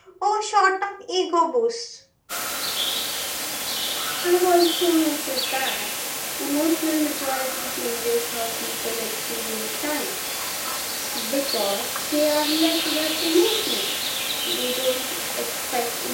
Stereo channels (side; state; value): both; identical; correlation 1.00